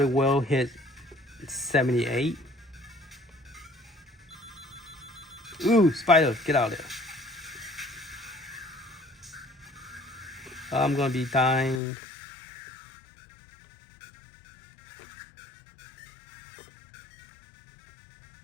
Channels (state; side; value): drops out; right; at 11.8 s